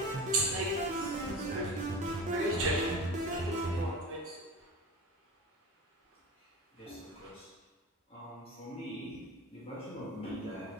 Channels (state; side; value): normal; both; correlation 0.31